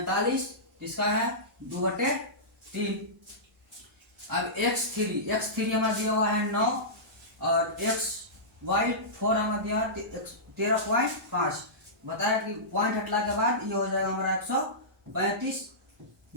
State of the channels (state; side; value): normal; both; correlation -0.18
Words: इसका है 2/3। अब x3 हमारा दिया हुआ है 9 और y4 हमारा दिया है 13.5। बताया कि पॉइंट हटला के बाद ये हो जाएगा हमारा 135।